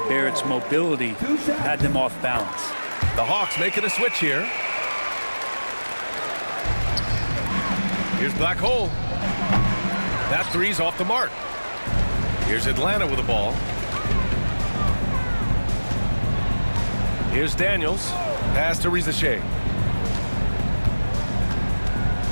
Barrett's mobility had them off balance. The Hawks making a switch here. Here's Black Hole. That three's off the mark. Here's Atlanta with the ball. Here's Daniels. Pass to Rizachet.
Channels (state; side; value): inverted; both; correlation -1.00